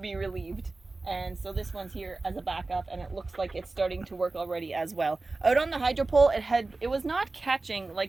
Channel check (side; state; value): left; quieter; 3.4 dB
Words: relieved, and so this one's here as a backup, and it looks like it's starting to work already as well. Out on the hydro pole, it was not catching